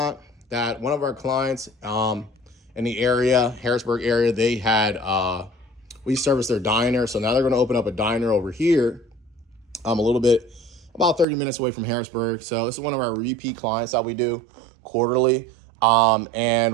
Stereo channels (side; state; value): left; drops out; at 11.2 s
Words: that one of our clients in the area, Harrisburg area, they had, we service their diner. So now they're going to open up a diner over here, a little bit, about 30 minutes away from Harrisburg. So this is one of our repeat clients that we do quarterly.